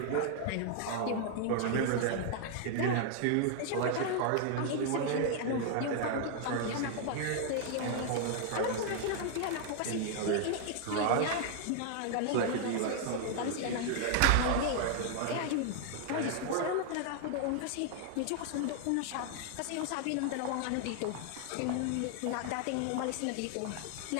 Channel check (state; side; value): different; both; correlation 0.00